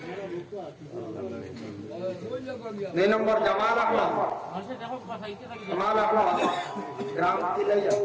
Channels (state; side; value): identical; both; correlation 1.00